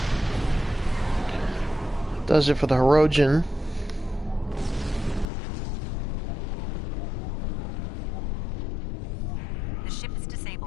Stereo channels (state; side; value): drops out; right; at 5.2 s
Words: Does it for the Hirogen. The ship is